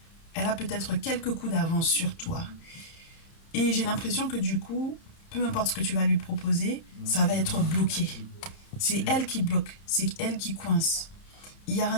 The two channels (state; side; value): late; right; 30 ms